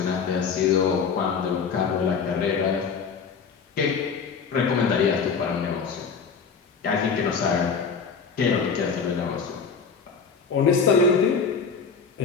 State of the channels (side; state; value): right; quieter; 5.7 dB